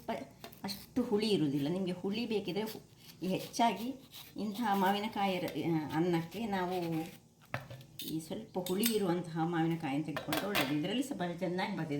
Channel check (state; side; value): identical; both; correlation 1.00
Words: ಅಷ್ಟು ಹುಳಿ ಇರುವುದಿಲ್ಲ. ನಿಮಗೆ ಹುಳಿ ಬೇಕಿದ್ರೆ ಹೆಚ್ಚಾಗಿ ಇಂತಹ ಮಾವಿನಕಾಯಿ ಅನ್ನಕ್ಕೆ ನಾವು ಈ ಸ್ವಲ್ಪ ಹುಳಿ ಇರುವಂತಹ ಮಾವಿನಕಾಯಿಯನ್ನು ತೆಗೆದುಕೊಂಡು ಒಳ್ಳೆಯದು. ಇದರಲ್ಲಿ ಸ್ವಲ್ಪ ಚೆನ್ನಾಗಿ